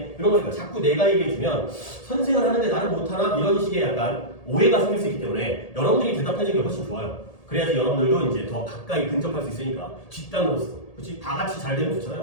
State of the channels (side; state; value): right; late; 1.8 ms